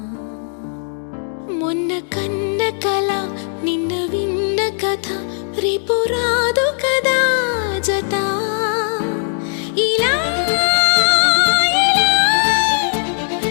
మొన్న కన్న కల నిన్న విన్న కథ రేపు రాదు కదా జత. ఇలా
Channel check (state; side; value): silent; right; digital silence